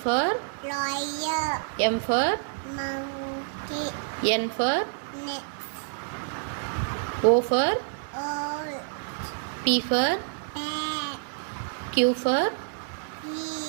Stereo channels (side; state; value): left; silent; 59 dB below the other